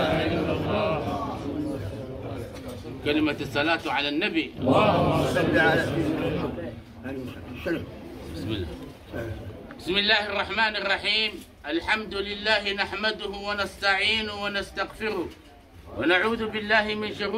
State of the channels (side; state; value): both; identical; correlation 1.00